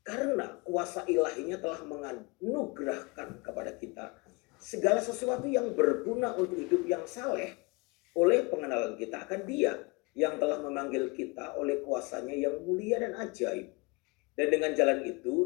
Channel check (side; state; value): right; quieter; 27.5 dB